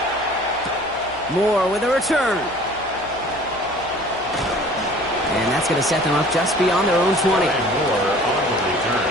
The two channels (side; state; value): right; noise; hum, 21 dB below the sound